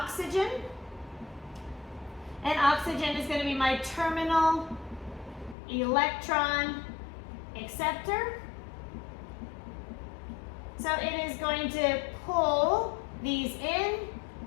And oxygen is going to be my terminal electron acceptor. So it is going to pull these in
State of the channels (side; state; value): right; drops out; at 5.6 s